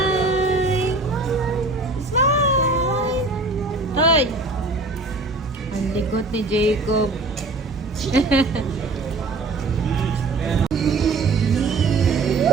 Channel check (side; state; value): left; quieter; 3.3 dB